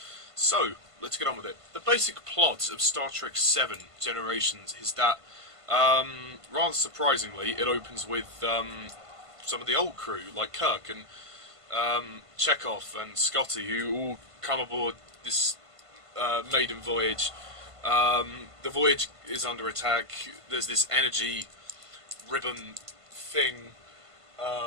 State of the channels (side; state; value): left; late; 1.5 ms